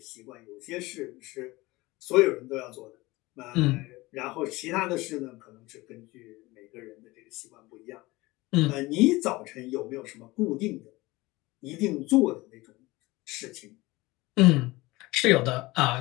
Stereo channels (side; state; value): right; quieter; 21.0 dB